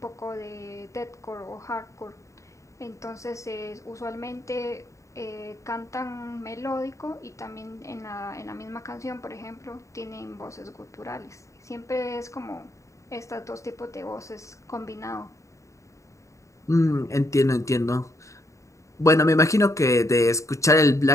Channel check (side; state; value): right; late; 0.15 ms